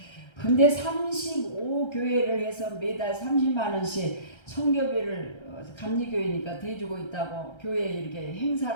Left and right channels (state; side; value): late; right; 1.3 ms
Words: 근데 35교회를 해서 매달 30만 원씩 선교비를 감리교회니까 대주고 있다고 교회에 이렇게